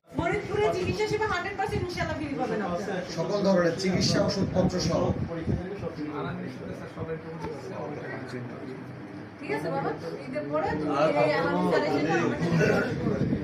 ফরিদপুরে চিকিৎসা সেবা 100% ইনশাআল্লাহ ফ্রি পাবেন আপনারা। সকল ধরনের চিকিৎসা ওষুধপত্র সহ। ঠিক আছে বাবা, ঈদের পরে তুমি এই আলামিন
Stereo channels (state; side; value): identical; both; correlation 1.00